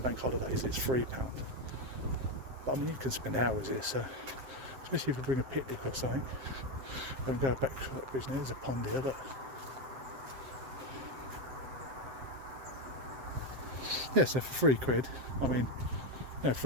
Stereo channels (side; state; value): left; late; 7.7 ms